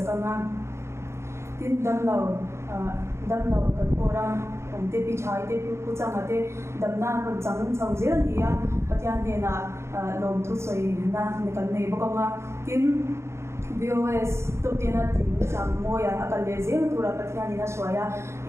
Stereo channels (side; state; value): left; late; 0.13 ms